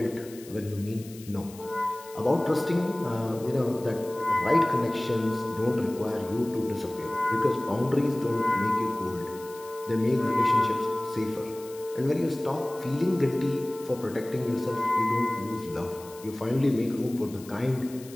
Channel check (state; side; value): noise; left; hiss, 19 dB below the sound